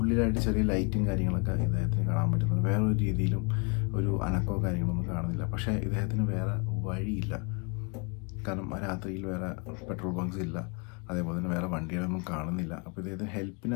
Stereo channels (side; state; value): right; quieter; 32.5 dB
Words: ചെറിയ ലൈറ്റും കാര്യങ്ങളൊക്കെ ഇദ്ദേഹത്തിന് കാണാൻ പറ്റുന്നുണ്ട്. വേറൊരു രീതിയിലും ഒരു അനക്കോ കാര്യങ്ങളൊന്നും കാണുന്നില്ല. പക്ഷേ ഇദ്ദേഹത്തിന് വേറെ വഴിയില്ല. കാരണം ആ രാത്രിയിൽ വേറെ പെട്രോൾ ബങ്ക്സ് ഇല്ല, അതേപോലെ തന്നെ വേറെ വണ്ടികളൊന്നും കാണുന്നില്ല. അപ്പോൾ ഇദ്ദേഹത്തിന്